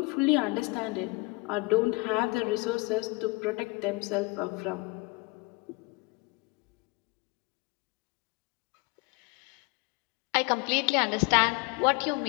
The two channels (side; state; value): right; quieter; 27.2 dB